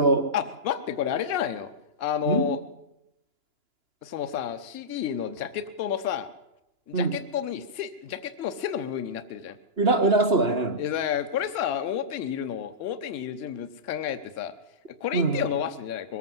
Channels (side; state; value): left; late; 2.9 ms